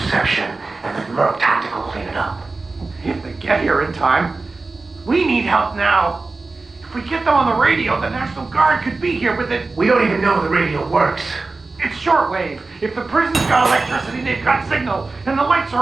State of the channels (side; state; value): left; quieter; 3.7 dB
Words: and then Merc Tactical clean it up. If they get here in time. We need help now. If we get them on the radio, the National Guard could be here with it. We don't even know the radio works. It's shortwave. If the prison's got electricity, they've got signal, and the lights